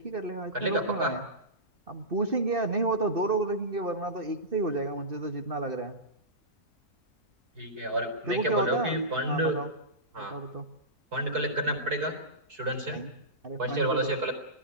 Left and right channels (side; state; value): both; normal; correlation -0.18